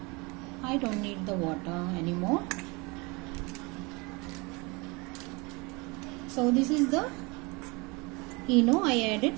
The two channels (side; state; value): left; quieter; 27.2 dB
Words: I don't need the water anymore. So this is the ENO I added.